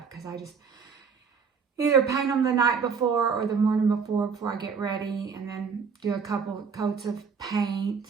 because I just either paint them the night before or the morning before I get ready, and then do a couple coats of paint.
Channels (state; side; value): quieter; left; 5.9 dB